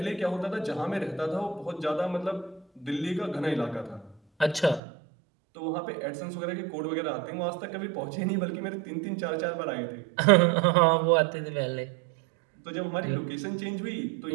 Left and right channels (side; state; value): left; drops out; at 4.8 s